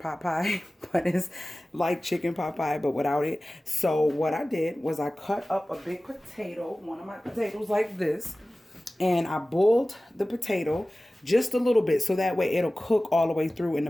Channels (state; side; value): normal; both; correlation 0.97